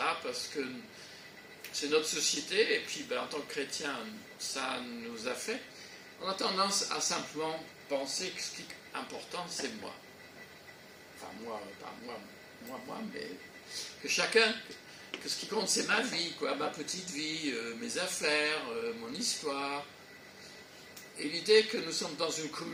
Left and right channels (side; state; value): both; identical; correlation 1.00